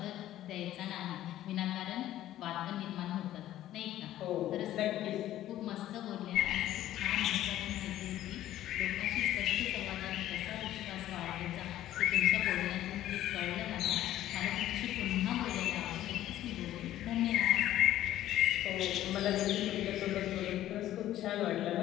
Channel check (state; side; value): quieter; right; 13.3 dB